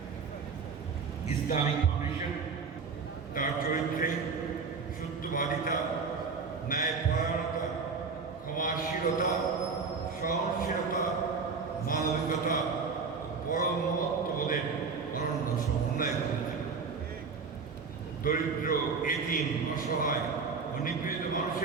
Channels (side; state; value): left; quieter; 5.1 dB